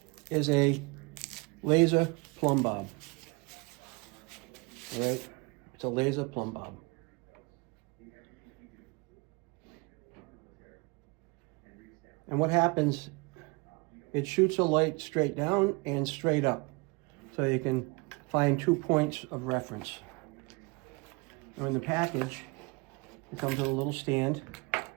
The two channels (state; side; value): quieter; left; 28.0 dB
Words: a laser plumb bob. All right? It's a laser plumb bob. And what happens, it shoots a light straight down and straight up. So you can find 2 points of reference. Now in the package, it comes with a little stand,